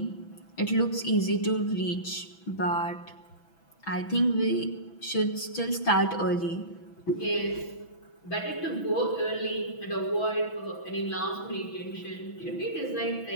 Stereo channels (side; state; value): right; late; 6.1 ms